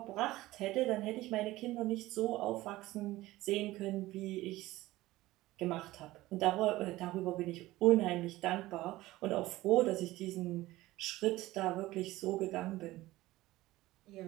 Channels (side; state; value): left; quieter; 17.6 dB